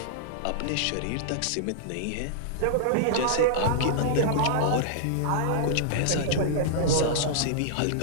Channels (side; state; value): both; different; correlation -0.01